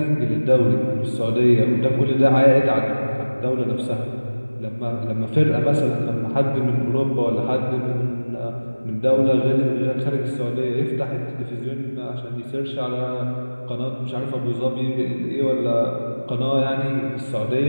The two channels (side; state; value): both; inverted; correlation -1.00